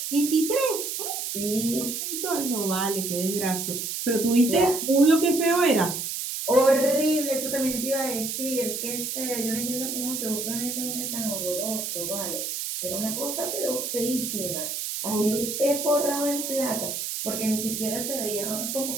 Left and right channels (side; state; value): right; noise; hiss, 4 dB below the sound